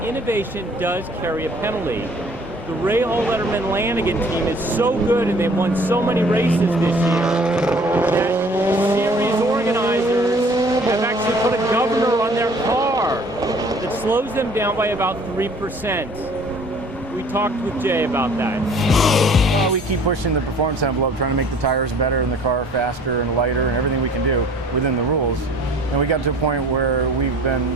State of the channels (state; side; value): normal; both; correlation 0.52